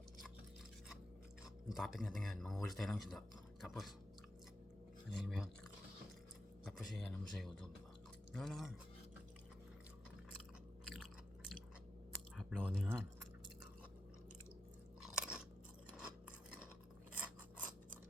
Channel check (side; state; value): both; normal; correlation 0.85